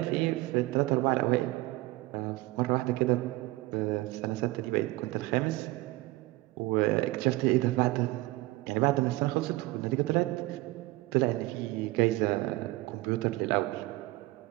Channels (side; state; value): left; quieter; 20.0 dB